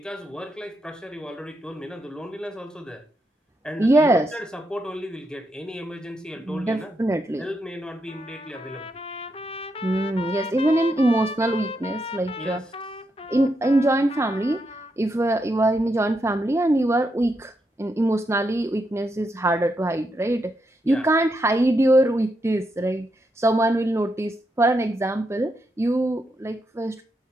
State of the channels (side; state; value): both; normal; correlation 0.82